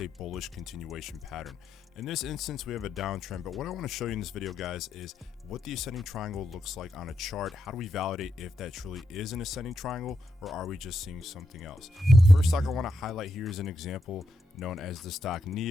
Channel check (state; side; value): normal; both; correlation 0.83